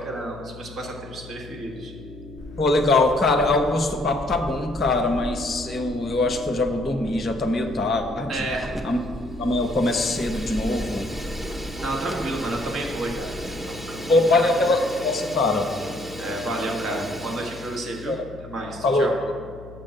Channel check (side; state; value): left; noise; hum, 17 dB below the sound